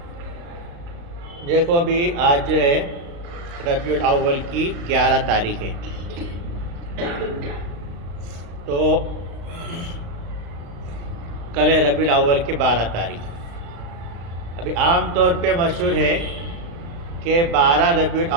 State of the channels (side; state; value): left; late; 35 ms